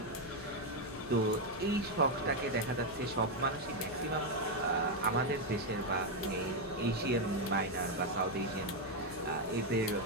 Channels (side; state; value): both; normal; correlation 0.03